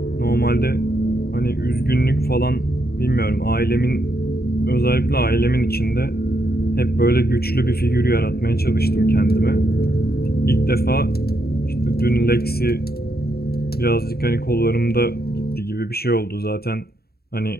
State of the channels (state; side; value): late; right; 0.45 ms